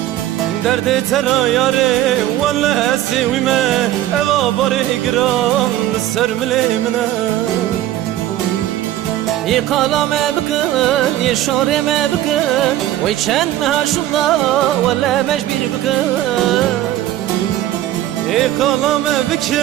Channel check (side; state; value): left; quieter; 13.5 dB